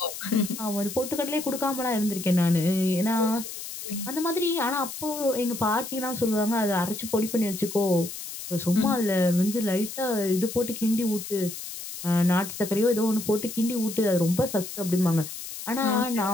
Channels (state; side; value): noise; left; hiss, 9 dB below the sound